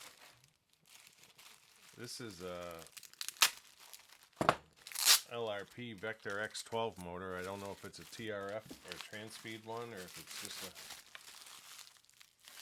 This is a LRP Vector X12 motor. I don't know if it's a TRF or a Transpeed one, or if it's just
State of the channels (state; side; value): identical; both; correlation 1.00